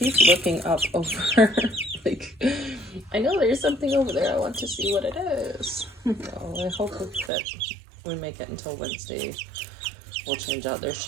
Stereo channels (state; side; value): drops out; left; at 7.3 s